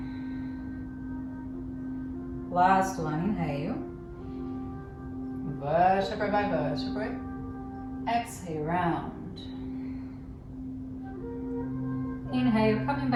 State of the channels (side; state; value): both; identical; correlation 1.00